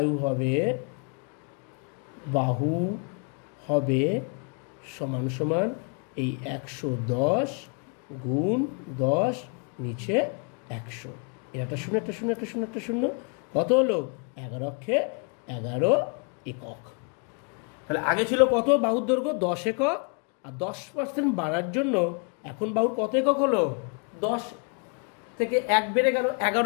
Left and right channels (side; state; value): right; quieter; 38.5 dB